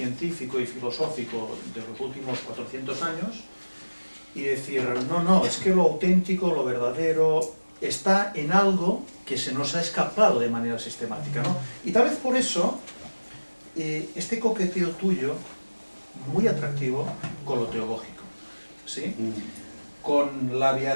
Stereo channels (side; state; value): both; inverted; correlation -1.00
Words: y filosófico de los últimos 400 años y decir, no, es que lo auténtico, lo verdadero, está en algo que se nos ha escapado de manera sistemática, ¿no? Y tal vez por eso, este coqueteo tuyo, muy atractivo con lo teológico, ¿sí? Con la